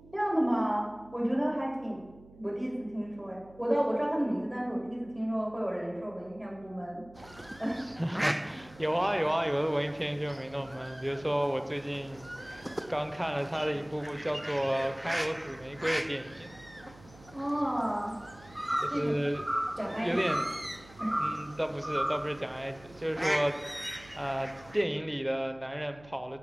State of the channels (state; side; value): noise; right; hum, 23 dB below the sound